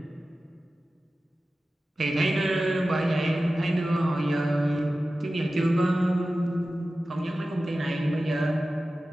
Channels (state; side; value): normal; both; correlation 0.95